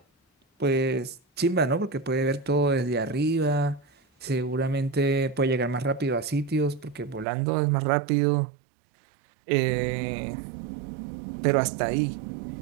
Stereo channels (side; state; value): left; drops out; at 7.2 s